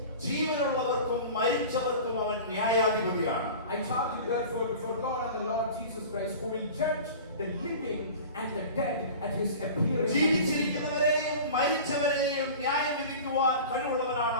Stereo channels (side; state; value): both; inverted; correlation -0.37